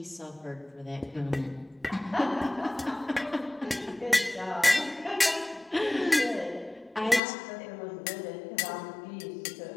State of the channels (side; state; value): right; drops out; at 7.2 s